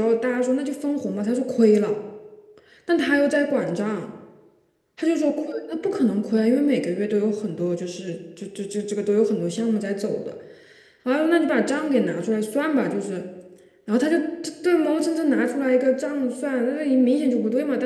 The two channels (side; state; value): both; identical; correlation 1.00